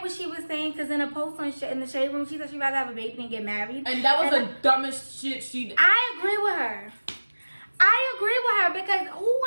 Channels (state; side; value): inverted; both; correlation -1.00